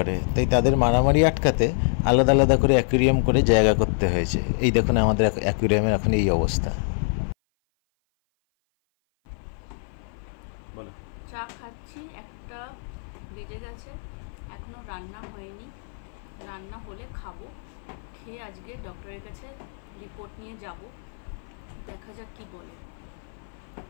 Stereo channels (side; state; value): right; silent; 56 dB below the other